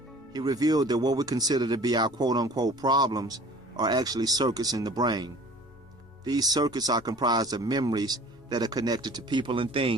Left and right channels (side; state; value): left; noise; rumble, 29 dB below the sound